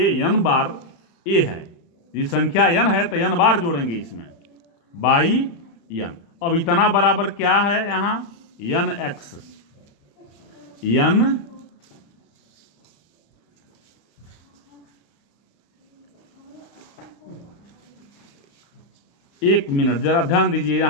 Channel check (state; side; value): late; right; 35 ms